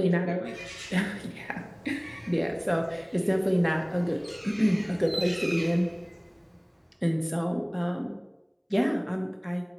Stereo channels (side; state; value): both; identical; correlation 1.00